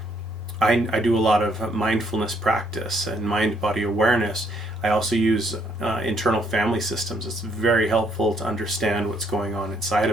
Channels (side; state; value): right; noise; hum, 29 dB below the sound